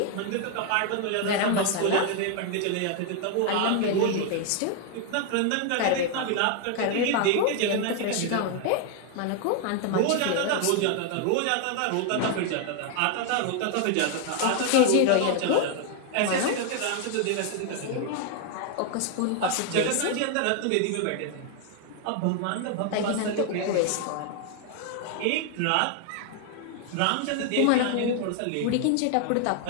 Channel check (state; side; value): different; both; correlation 0.00